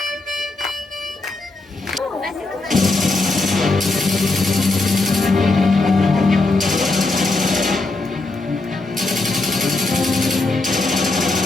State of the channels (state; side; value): quieter; right; 3.2 dB